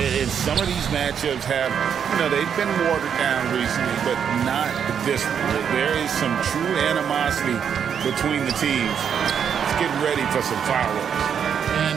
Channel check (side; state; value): left; quieter; 7.8 dB